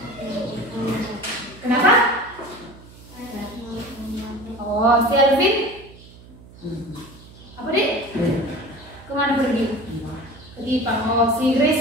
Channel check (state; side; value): noise; right; hum, 21 dB below the sound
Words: Kenapa? Oh, si Alvin? Apa deh? Kemana pergi? Pergi Pak. Oh, si Grace